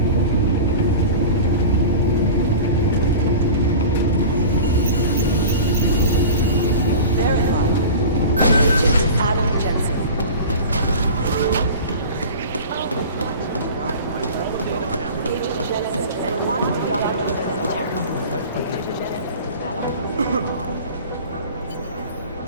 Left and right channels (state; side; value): inverted; both; correlation -0.36